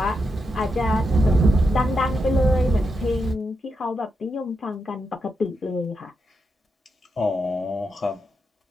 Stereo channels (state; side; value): normal; both; correlation 0.85